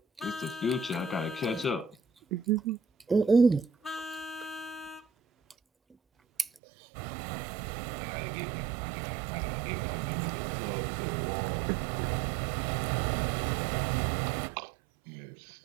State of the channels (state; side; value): drops out; left; at 6.5 s